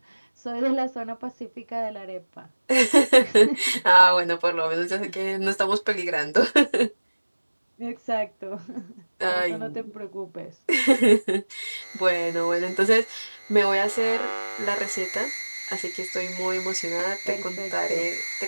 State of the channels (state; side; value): inverted; both; correlation -1.00